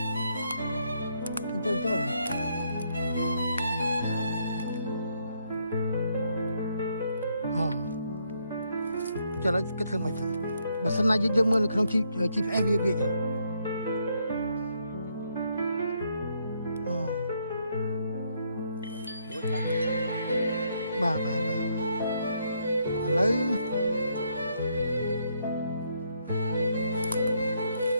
ចូលអូចូលហើយគេធ្វើមកចឹងបើសិនណាយើងមើលនៅក្នុង GPS វាចឹងបាទឥឡូវ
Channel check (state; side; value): inverted; both; correlation -0.74